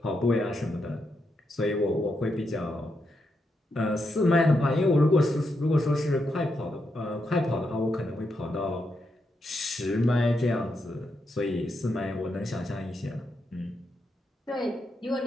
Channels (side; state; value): both; normal; correlation 0.83